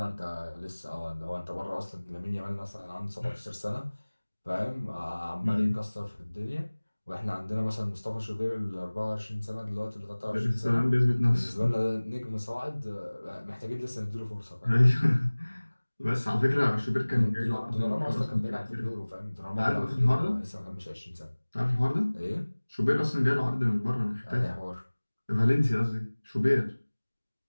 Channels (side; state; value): both; inverted; correlation -1.00